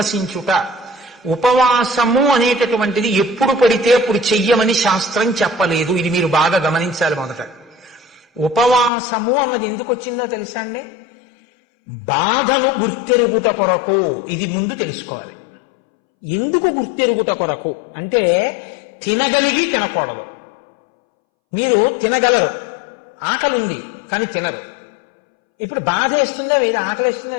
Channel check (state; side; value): drops out; right; at 8.9 s